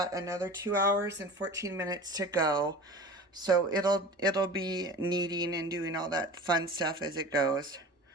another 2 hours and 14 minutes to go. So it'll be kneading and doing all that fun stuff as it goes.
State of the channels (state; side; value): normal; both; correlation 0.37